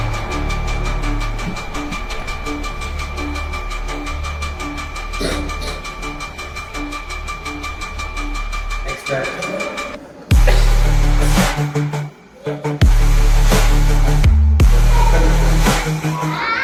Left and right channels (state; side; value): identical; both; correlation 1.00